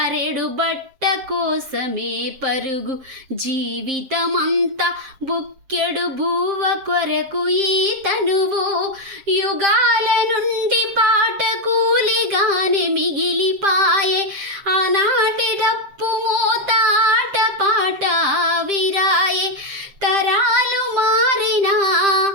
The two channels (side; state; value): left; late; 7.6 ms